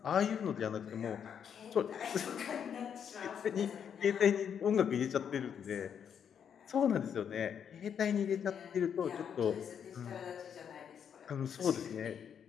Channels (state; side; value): quieter; right; 8.0 dB